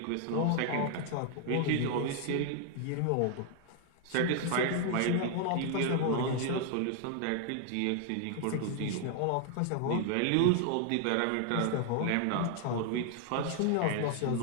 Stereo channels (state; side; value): different; both; correlation 0.00